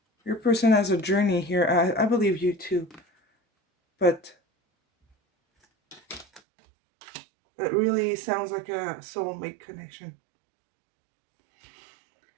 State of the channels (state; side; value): drops out; left; at 6.4 s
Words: Your person has a journey here. I believe you too. But it really sounds like a soulmate connection.